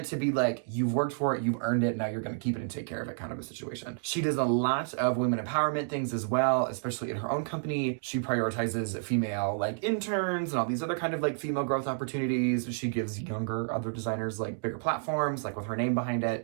to be like you've worked for it, you've earned it, now you're going to keep it and take care of it kind of a situation. She does a lot of women empowerment things as well, especially in her own company. She prioritizes female like interns and all these other kind of like female growth opportunities. She gives younger other designers like bigger platforms, like with her name behind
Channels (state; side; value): silent; left; digital silence